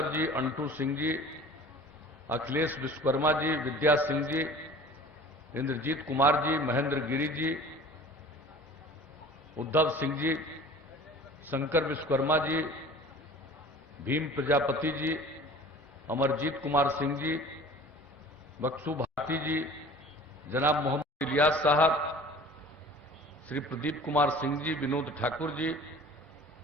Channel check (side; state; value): both; normal; correlation 0.44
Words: जी, अंटू सिंह जी, अखिलेश विश्वकर्मा जी, विद्या सिंह जी, इंद्रजीत कुमार जी, महेंद्र गिरी जी, उद्धव सिंह जी, शंकर विश्वकर्मा जी, भीम प्रजापति जी, अमरजीत कुमार सिंह जी, बक्सू भारती जी, जनाब मोहम्मद इलियास साहब, श्री प्रदीप कुमार सिंह जी, विनोद ठाकुर जी,